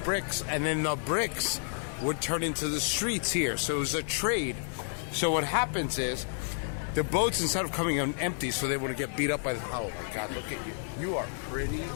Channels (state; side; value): silent; right; digital silence